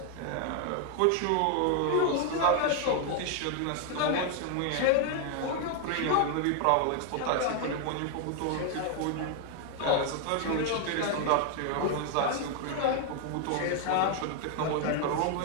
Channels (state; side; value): different; both; correlation 0.00